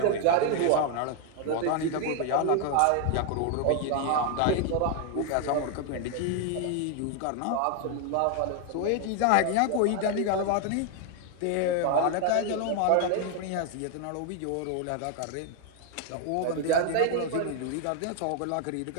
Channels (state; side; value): different; both; correlation 0.00